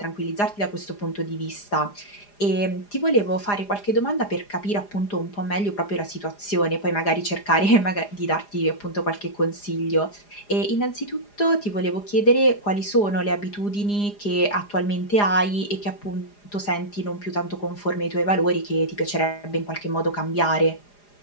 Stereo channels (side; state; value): right; late; 4.9 ms